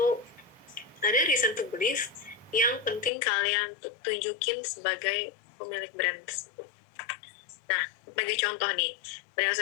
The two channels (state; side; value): drops out; right; at 3.1 s